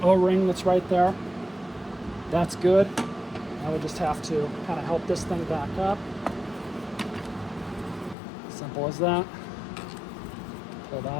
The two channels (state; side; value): drops out; right; at 8.2 s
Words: O-ring that's right there. That's good. Now we just have to kind of help this thing back up. Simple as that. Pull